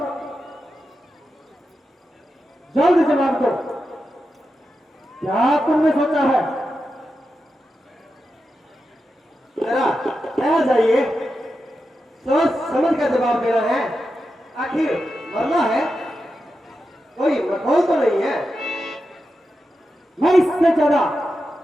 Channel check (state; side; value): normal; both; correlation 0.89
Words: जल्द जवाब दो, क्या तुमने सोचा है? जरा ठहर जाइए, सोच समझ कर जवाब देना है। आखिर मरना है, कोई मखौल तो नहीं है। मैं इससे ज्यादा